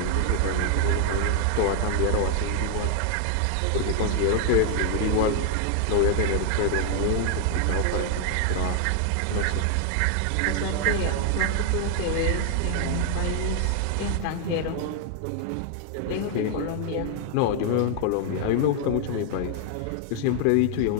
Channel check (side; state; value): both; different; correlation 0.00